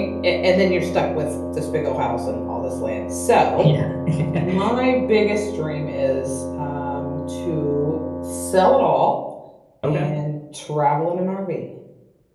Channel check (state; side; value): identical; both; correlation 1.00